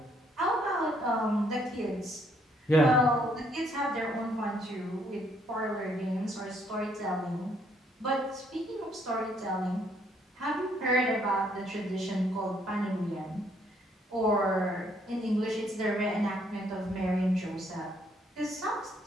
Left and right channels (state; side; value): normal; both; correlation 0.68